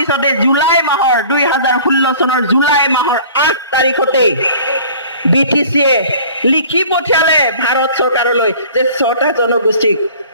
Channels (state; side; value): inverted; both; correlation -0.47